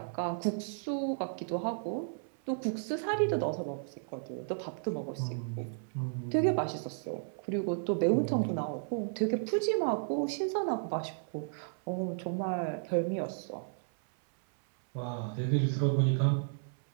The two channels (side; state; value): left; silent; 56 dB below the other